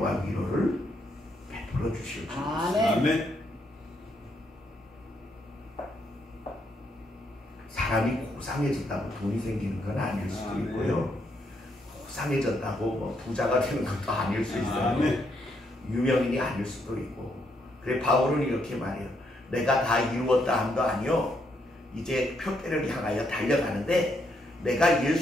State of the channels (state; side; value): normal; both; correlation 0.75